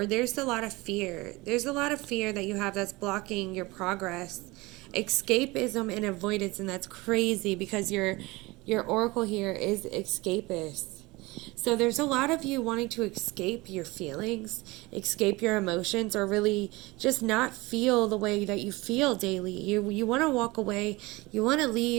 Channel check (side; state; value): left; quieter; 22.4 dB